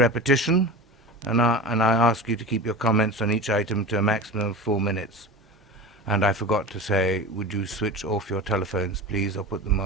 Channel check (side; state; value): both; normal; correlation 0.31